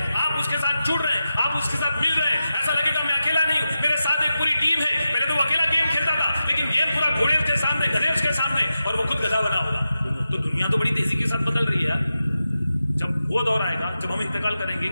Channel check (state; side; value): inverted; both; correlation -0.91